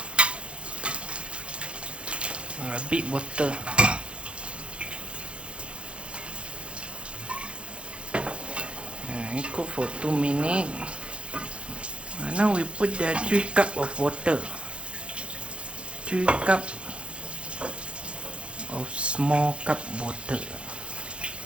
A bit water. And cook for 2 minutes. Now we put the 3 cup of water. 3 cup of small cup water.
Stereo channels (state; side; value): late; left; 0.058 ms